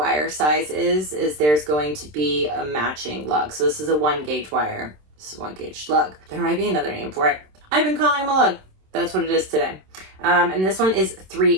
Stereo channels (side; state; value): left; late; 27 ms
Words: size is there's going to be a matching lug. So this is a 1 gauge wire. This is a 1 gauge lug. There might be another name for it. I've been calling them a lug. That's what it is today. And this one is